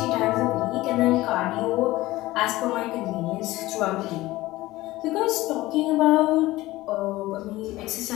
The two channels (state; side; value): quieter; right; 18.0 dB